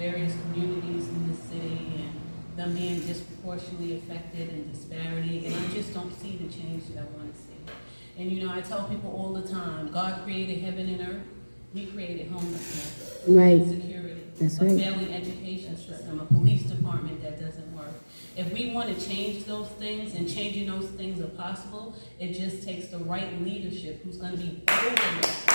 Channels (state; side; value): inverted; both; correlation -1.00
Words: communities in the city and them being disproportionately affected and disparity, and I just don't see the change that I want to see. And you know, I tell people all the time, God created heaven and earth. He created homelessness, Right. insecurity, That's a right. failing education system, a police department that doesn't work. If we want to change those things, and changing those things are possible, it just takes the right leadership who's going to be open.